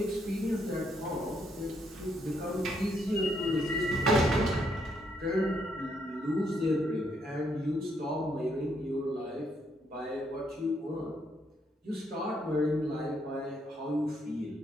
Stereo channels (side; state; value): both; normal; correlation 0.74